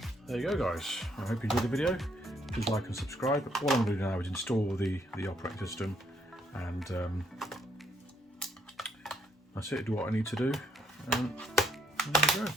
there you go, guys. I hope you enjoyed the video. Please like and subscribe. All I'm going to do now is install the operating system, and that's it. Do what I need to do, and there you go.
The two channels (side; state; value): both; normal; correlation 0.71